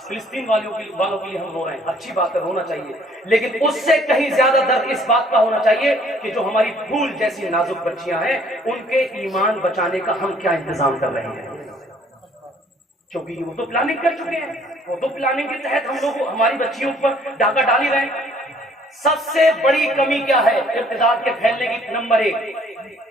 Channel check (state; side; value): normal; both; correlation 0.60